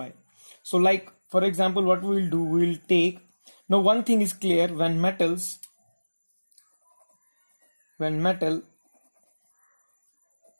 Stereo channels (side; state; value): both; inverted; correlation -1.00